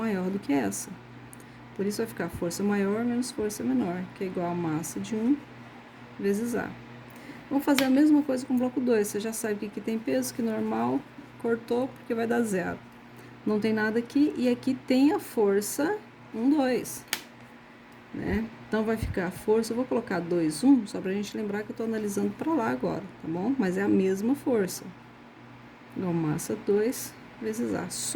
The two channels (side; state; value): both; identical; correlation 1.00